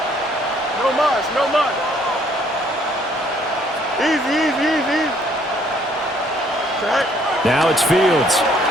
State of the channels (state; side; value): normal; both; correlation 0.64